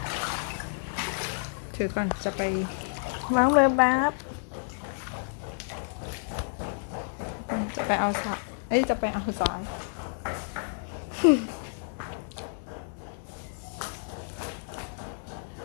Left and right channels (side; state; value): right; silent; 56 dB below the other